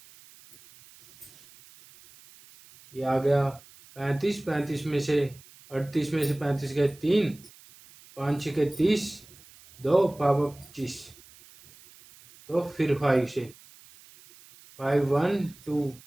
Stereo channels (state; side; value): noise; right; hiss, 23 dB below the sound